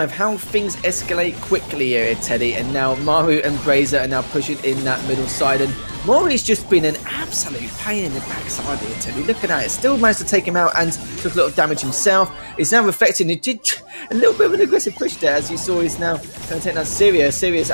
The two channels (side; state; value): both; inverted; correlation -1.00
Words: How things escalate quickly here, Teddy. And now Maru and Brazier are now pushing in that middle side. And Mori's just been an absolute pain in the backside here, Teddy. Look at that. It still managed to take him out and took a lot of damage himself. He's now reflecting. He did a little bit of an aggressive push there, as you saw. He's now going to take down Syria. Syria's